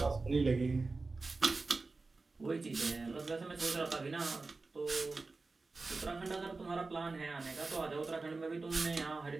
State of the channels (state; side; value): quieter; left; 3.7 dB